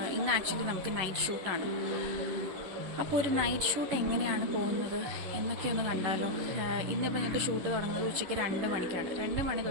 ഇന്ന് ആക്ച്വലി നമുക്ക് നൈറ്റ് ഷൂട്ടാണ്. അപ്പോൾ ഒരു നൈറ്റ് ഷൂട്ട് എങ്ങനെയാണ് പോകുന്നത് എന്നൊക്കെ ഒന്ന് കണ്ടാലോ. ഇന്നിപ്പോൾ ഞങ്ങൾക്ക് ഷൂട്ട് തുടങ്ങുന്നത് ഉച്ചയ്ക്ക് 2 മണിക്കാണ്. 2 മണി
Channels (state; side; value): late; left; 11 ms